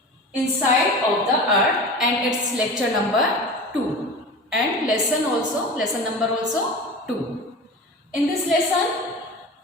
inside of the earth and its lecture number 2 and lesson number also 2. In this lesson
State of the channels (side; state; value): both; normal; correlation 0.33